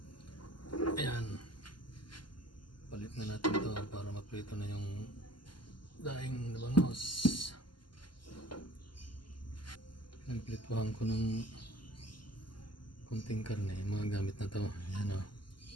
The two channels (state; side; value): late; right; 0.71 ms